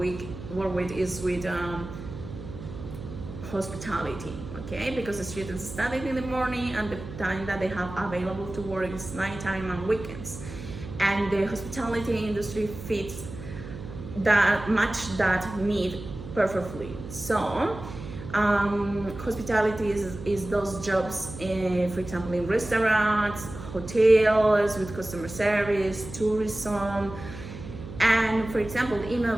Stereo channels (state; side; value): noise; right; hum, 12 dB below the sound